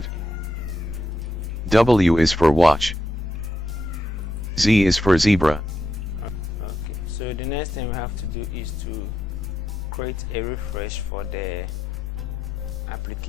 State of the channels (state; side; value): normal; both; correlation 0.83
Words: W is for watch. Z is for zebra. Okay, so the next thing we have to do is to create a refresh for the